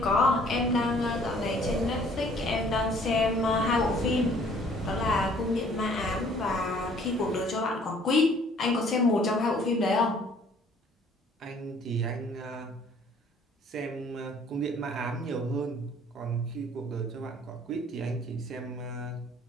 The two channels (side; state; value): both; normal; correlation 0.57